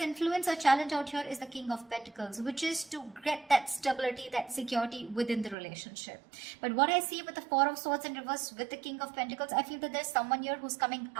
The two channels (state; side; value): drops out; left; at 5.6 s